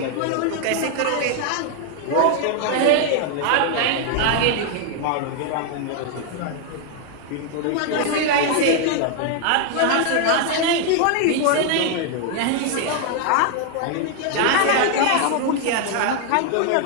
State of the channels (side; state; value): both; different; correlation 0.00